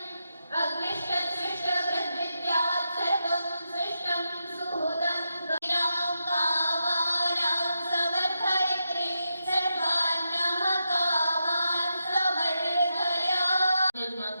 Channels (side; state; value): both; inverted; correlation -0.85